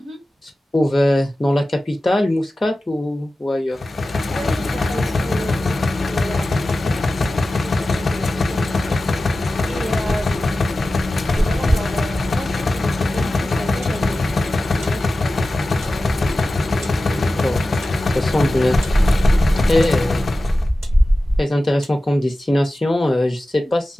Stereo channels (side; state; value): both; normal; correlation 0.95